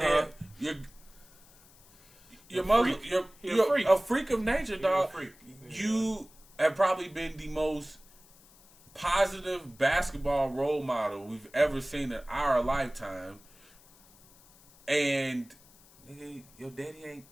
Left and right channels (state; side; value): noise; left; hiss, 26 dB below the sound